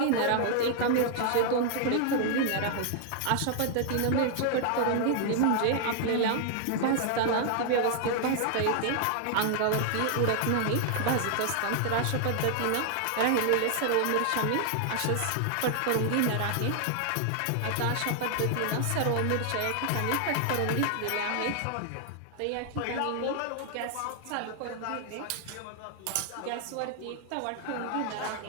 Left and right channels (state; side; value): different; both; correlation 0.00